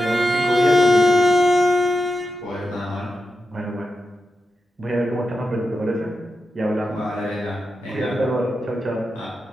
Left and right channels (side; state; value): both; normal; correlation 0.89